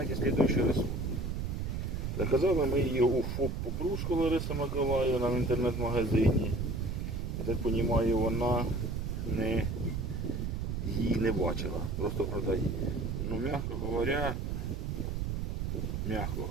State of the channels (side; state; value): right; noise; rumble, 2 dB below the sound